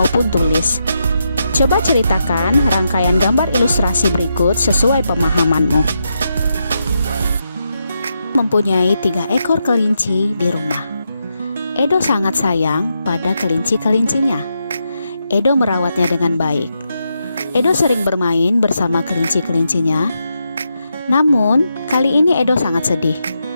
tulis. Coba ceritakan rangkaian gambar ilustrasi berikut sesuai pemahamanmu. Mempunyai 3 ekor kelinci di rumah. Edo sangat sayang pada kelinci-kelincinya. Edo merawatnya dengan baik. Edo sering bermain bersama kelinci-kelincinya. Namun, kali ini Edo sangat sedih.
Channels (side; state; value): both; inverted; correlation -0.84